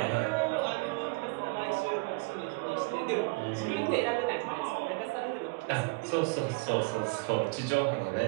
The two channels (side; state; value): left; quieter; 29.3 dB